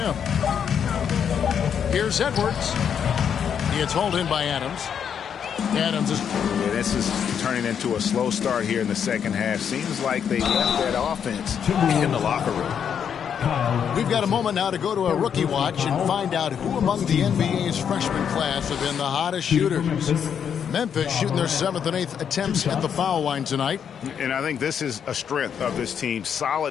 Here's Edwards. It's hauled in by Adams. Adams is... Yeah, this is turning into a slow start here in the second half. Seems like they left that offense in the locker room. We've got a moment now to go to a rookie watch and find out who among the NBA's freshman class have been the hottest shooters. Memphis shooting their 7th and 8th attempts at the foul line tonight. And I think this is a strength of this team.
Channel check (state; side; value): quieter; right; 7.9 dB